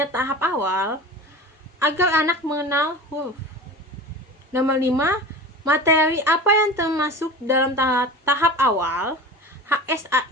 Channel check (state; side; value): normal; both; correlation 0.34